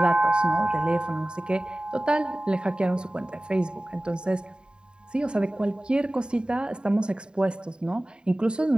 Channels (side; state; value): left; late; 0.049 ms